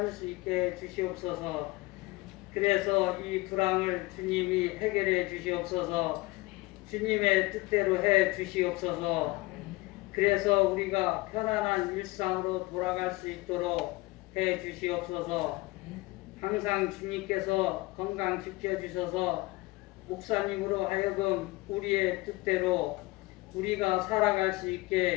수 있게 해 주시옵소서. 그래서 이 불황을 주님이 해결해 주시옵소서. 주님의 뜻대로 해 주시옵소서. 그래서 우리가 편안한 일상으로 돌아갈 수 있도록 해 주시옵소서. 항상 주님께서 건강 지켜주셔서 목사님으로 하여금 우리의 뜻대로 우리가 살아갈 수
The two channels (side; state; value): right; quieter; 21.6 dB